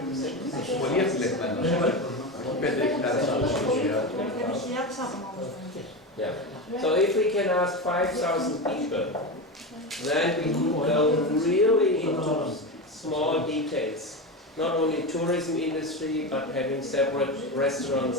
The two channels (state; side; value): normal; both; correlation 0.20